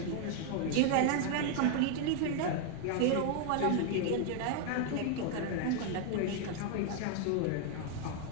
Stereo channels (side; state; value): both; different; correlation 0.00